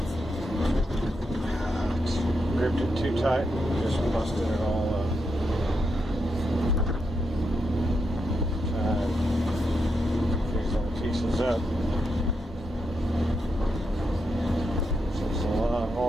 gripped it too tight and just busted it all up. Try and these little pieces up. So it's a lot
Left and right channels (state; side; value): normal; both; correlation 0.83